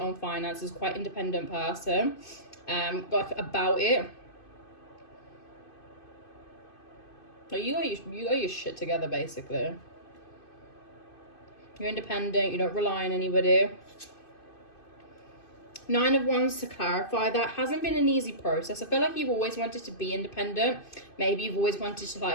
own finances, quite independent person. Like about it. Like you got your shit together, basically. You're independent, you don't rely on anybody. 9 of Wands, to clarify, that hasn't been an easy process. I feel like you've always wanted to be independent. Maybe you've always wanted to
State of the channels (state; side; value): late; right; 2.5 ms